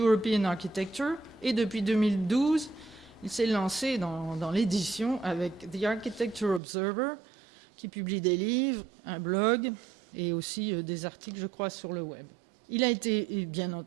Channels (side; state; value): left; drops out; at 6.6 s